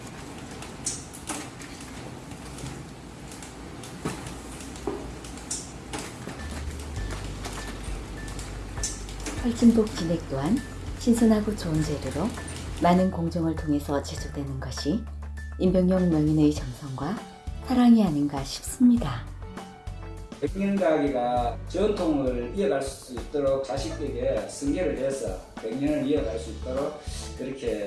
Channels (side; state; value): both; identical; correlation 1.00